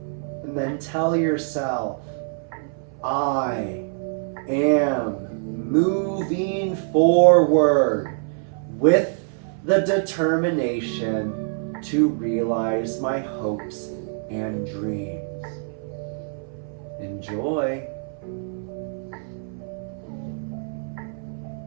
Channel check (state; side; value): silent; left; 58 dB below the other